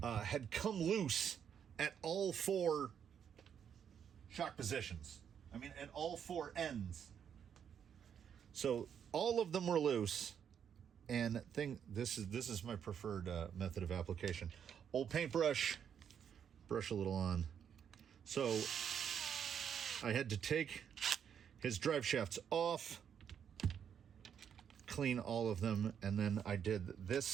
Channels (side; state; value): left; quieter; 8.2 dB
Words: had come loose at all four shock positions. I mean, at all four ends. So all of them were loose. And this is my preferred method of application. Old paintbrush, brush a little on. So I had to take his drive shafts off, clean all of them, and then I did